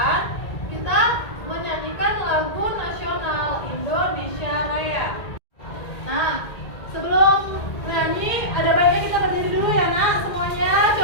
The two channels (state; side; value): late; right; 1.8 ms